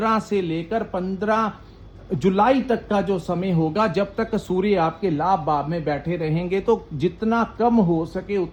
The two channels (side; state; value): both; identical; correlation 1.00